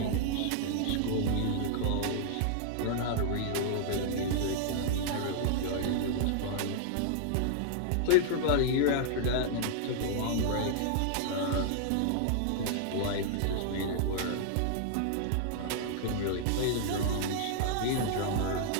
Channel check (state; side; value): different; both; correlation -0.01